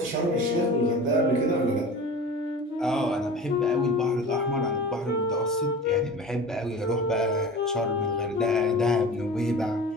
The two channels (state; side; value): normal; both; correlation 0.36